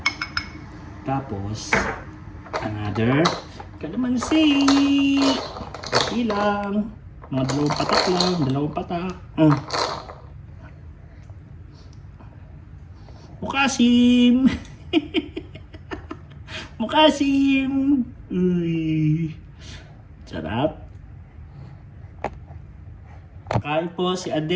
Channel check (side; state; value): both; identical; correlation 1.00